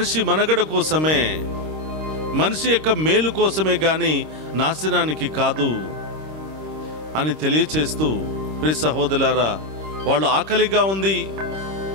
మనుగడ కోసమే, మనిషి యొక్క మేలు కోసమే కానీ నాశనానికి కాదు అని తెలియచేస్తూ, ప్రియ సహోదరులారా, వాళ్ళు ఆకలిగా ఉంది,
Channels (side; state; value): left; late; 26 ms